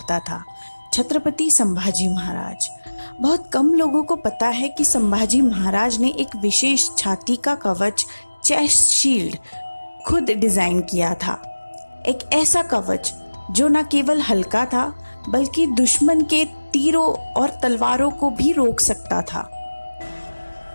था। छत्रपति संभाजी महाराज। बहुत कम लोगों को पता है कि संभाजी महाराज ने एक विशेष छाती का कवच, चेस्ट शील्ड, खुद डिजाइन किया था। एक ऐसा कवच जो न केवल हल्का था बल्कि दुश्मन के तीरों और तलवारों को भी रोक सकता था।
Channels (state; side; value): inverted; both; correlation -1.00